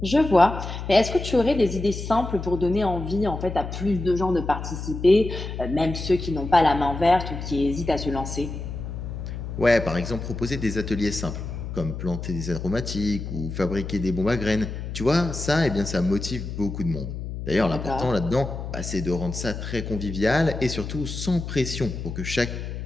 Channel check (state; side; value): noise; left; hum, 7 dB below the sound